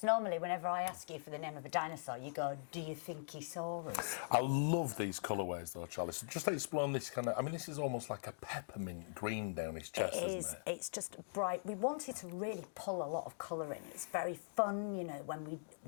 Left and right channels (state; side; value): silent; right; digital silence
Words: normally whenever I ask you for the name of a dinosaur, you go, do you think he saw us? I love these colourways though, Charlie. So just explain this kind of... I mean, this is almost like a peppermint green down his chest, isn't it? It's just bright. We wanted to really pull a lot of colour in. It's very fun, you know, when